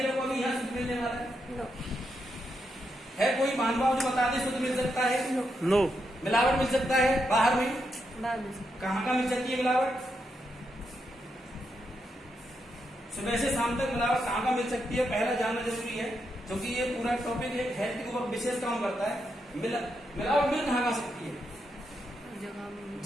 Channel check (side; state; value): both; normal; correlation 0.82